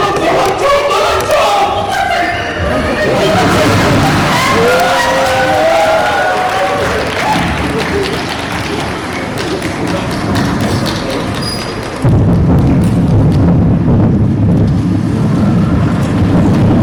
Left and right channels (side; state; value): both; identical; correlation 1.00